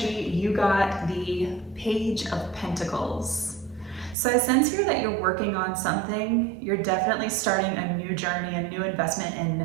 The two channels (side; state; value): left; drops out; at 4.2 s